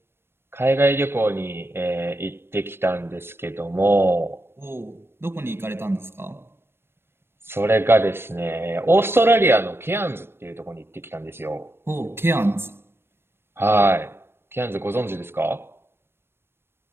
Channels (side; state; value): left; late; 0.12 ms